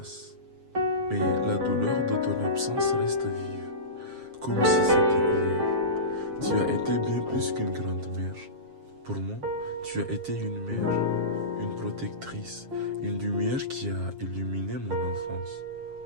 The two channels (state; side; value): late; left; 7.5 ms